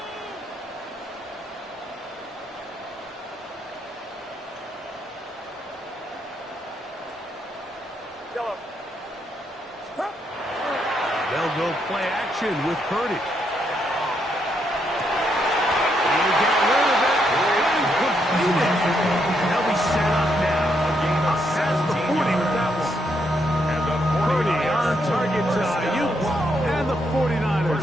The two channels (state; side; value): normal; both; correlation 0.77